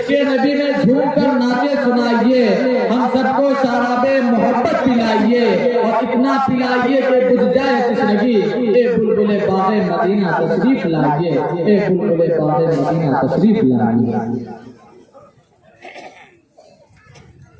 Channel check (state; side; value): identical; both; correlation 1.00